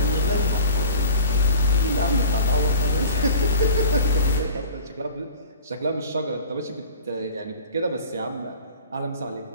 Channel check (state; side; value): inverted; both; correlation -0.39